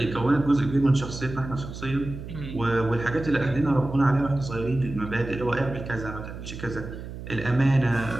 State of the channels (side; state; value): right; noise; hum, 10 dB below the sound